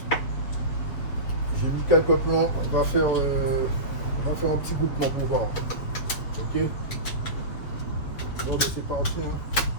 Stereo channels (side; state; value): right; late; 7.3 ms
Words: J'ai mis quelques plans, on va faire un petit groupement pour voir. Ok. Bon, c'est parti hein,